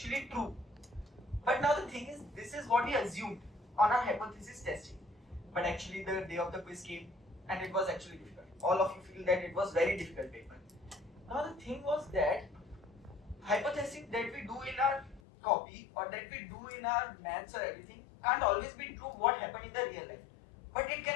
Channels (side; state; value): right; drops out; at 15.2 s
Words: true. But now the thing is, this is what we assumed on our hypothesis testing. But actually the day of the quiz came and it was actually difficult. All of you feel that it was very difficult paper. Now the thing was that hypothesis that we do in our copy or that we do in our maths or everything can't always be true what happened in the real life. But it can